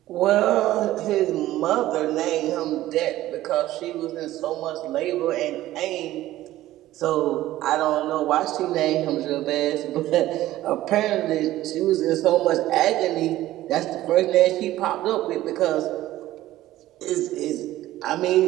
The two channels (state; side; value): quieter; left; 15.1 dB